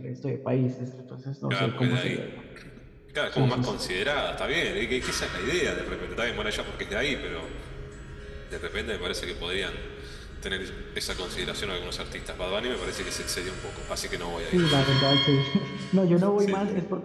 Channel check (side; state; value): both; identical; correlation 1.00